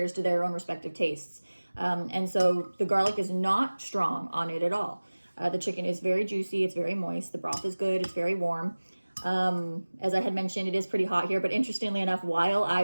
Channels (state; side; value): inverted; both; correlation -1.00